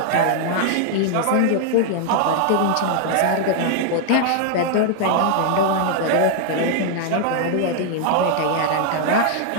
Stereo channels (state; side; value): different; both; correlation 0.00